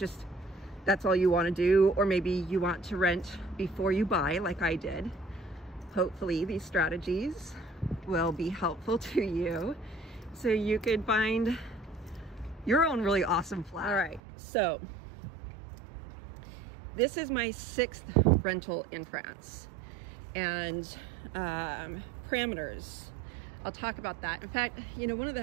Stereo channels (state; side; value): drops out; left; at 14.2 s